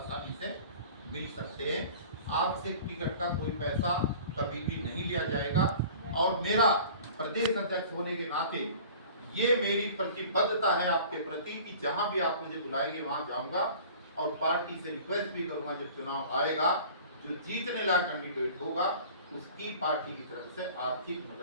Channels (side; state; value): both; inverted; correlation -0.45